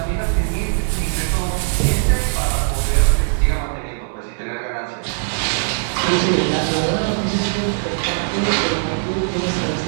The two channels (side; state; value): left; silent; digital silence